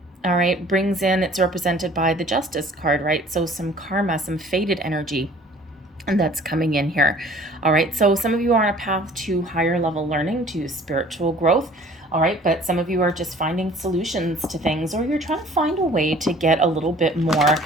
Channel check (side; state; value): both; normal; correlation 0.51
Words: All right, brings in, it's represented by the Justice card, right? So some karma, some fated energy, and that's coming in here. All right, so some of you are on a path to higher level learning, to spiritual growth. All right, but some of you are just finding solutions to things, or you're trying to find a way to get a little bit more